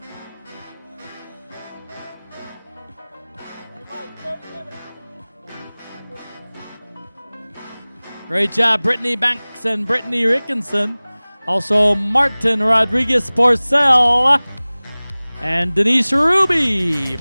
Great job, Brittany Banks and Brittany Rickinson. Also, Martin Rodriguez Porcel and Denise Ruby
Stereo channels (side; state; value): both; inverted; correlation -1.00